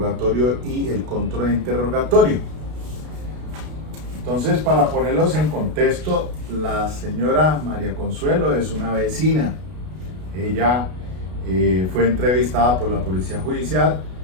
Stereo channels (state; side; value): late; left; 33 ms